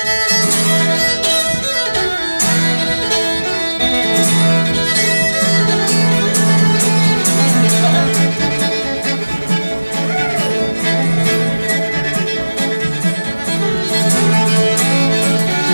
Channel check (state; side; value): inverted; both; correlation -1.00